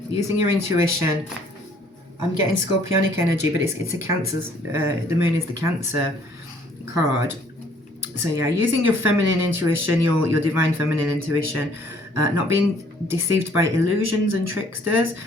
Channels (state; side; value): normal; both; correlation 0.60